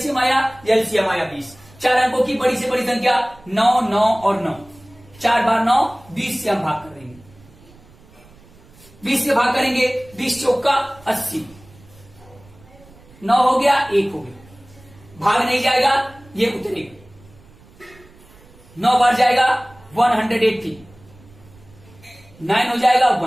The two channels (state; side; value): noise; right; rumble, 25 dB below the sound